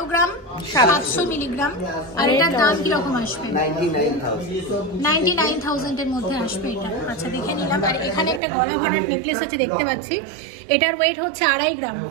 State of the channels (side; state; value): left; drops out; at 8.4 s